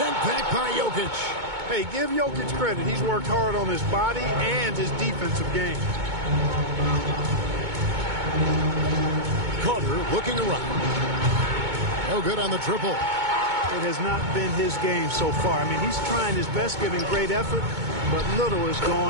back by Jokic. Hey, give Jokic credit. He's worked hard on his body and his defensive game. Carter looking around. No good on the triple. It has not been his game so far. I mean, he's trying his best, giving great effort, but little has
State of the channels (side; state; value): left; late; 2.2 ms